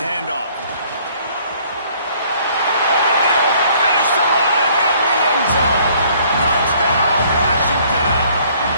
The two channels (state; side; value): inverted; both; correlation -0.60